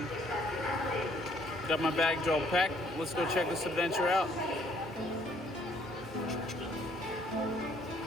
got my baggage all packed. Let's go check this adventure out.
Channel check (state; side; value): normal; both; correlation 0.64